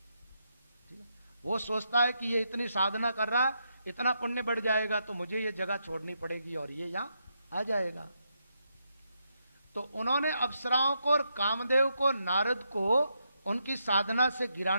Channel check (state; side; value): inverted; both; correlation -0.81